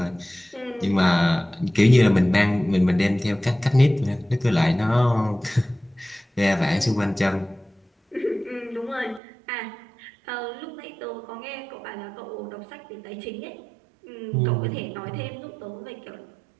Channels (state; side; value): drops out; left; at 9.2 s